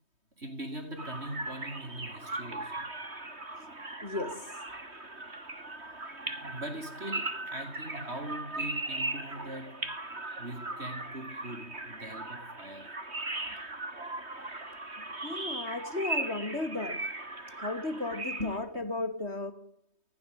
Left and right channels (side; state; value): left; late; 3.2 ms